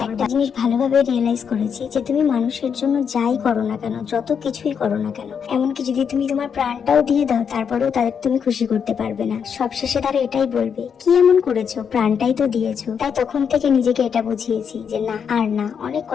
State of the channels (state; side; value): quieter; right; 7.1 dB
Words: একটা জিনিস ভালোভাবে রিয়েলাইজ করেছি যে তুমি মানুষের জন্য যাই করো না কেন, যত কিছুই করো না কেন, এমনকি যদি তুমি তোমার প্রাণটাও দিয়ে দাও, তারপরেও তাদের তুমি খুশি করতে পারবে না। সবশেষে তারা এটাই বলবে, কি এমন করেছো, প্রাণটাই তো দিয়েছো। তাই তখন থেকে নিজেকে এটা বুঝিয়েছি যে না, আর না, অনেক